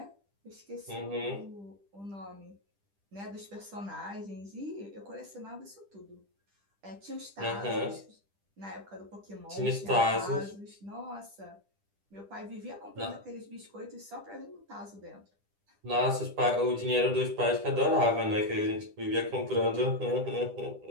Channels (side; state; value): left; late; 10 ms